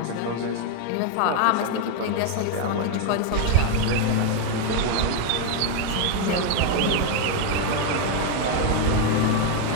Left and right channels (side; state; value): both; different; correlation 0.01